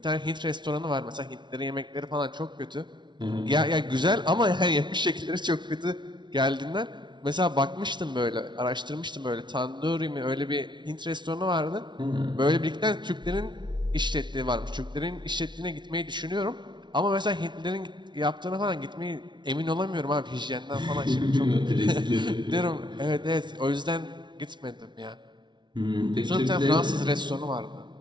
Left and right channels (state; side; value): late; left; 0.22 ms